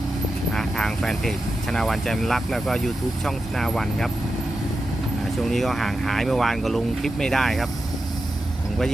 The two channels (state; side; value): normal; both; correlation 0.90